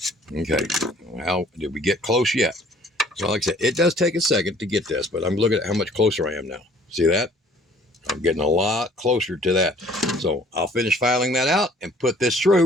Okay, how did we get close yet? So like I said, it does take a second to get this, but I'm looking at how much closer I am now. See that? I'm getting a lot closer to that. So I'll finish filing that out and put this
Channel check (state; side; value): normal; both; correlation 0.56